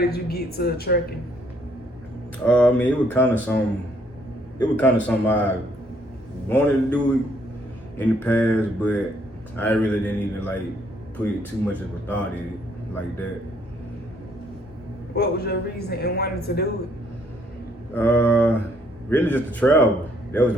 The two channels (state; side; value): normal; both; correlation 0.67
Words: you get to trucking? I mean, it was kind of something I wanted to do in the past, but I really didn't even put too much of a thought in it like that. What was your reason in wanting to do it? Really just to travel. That was